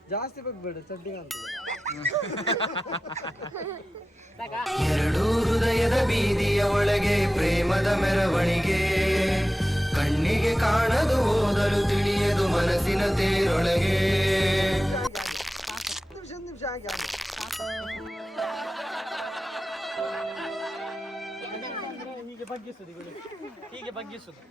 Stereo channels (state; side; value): normal; both; correlation 0.93